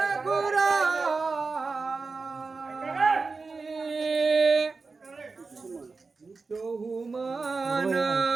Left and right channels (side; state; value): left; quieter; 4.2 dB